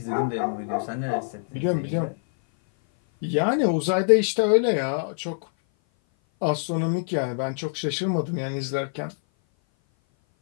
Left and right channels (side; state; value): right; silent; 57 dB below the other